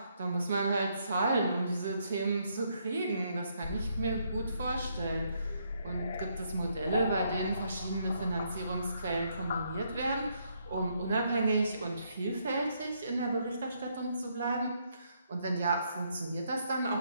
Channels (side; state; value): both; inverted; correlation -0.74